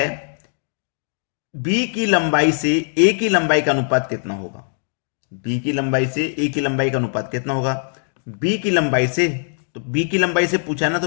बी की लंबाई से ए की लंबाई का अनुपात कितना होगा। बी की लंबाई से ए की लंबाई का अनुपात कितना होगा। बी की लंबाई से, तो बी की लंबाई से पूछा ना,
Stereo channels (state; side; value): silent; right; digital silence